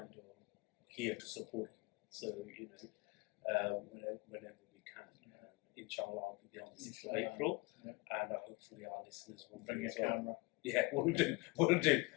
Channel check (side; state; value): right; quieter; 24.8 dB